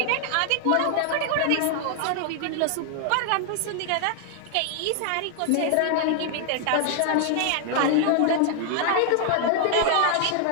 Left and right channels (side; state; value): both; different; correlation 0.00